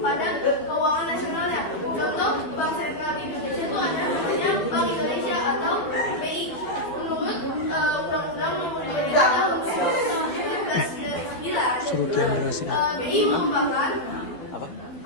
keuangan nasionalnya. Contoh Bank Sentral di Indonesia itu ada namanya Bank Indonesia atau BI. Menurut Undang-Undang Nomor 23 Tahun 1999, BI merupakan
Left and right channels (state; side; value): late; right; 12 ms